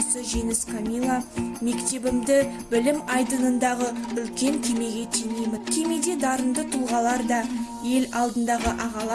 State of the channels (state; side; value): identical; both; correlation 1.00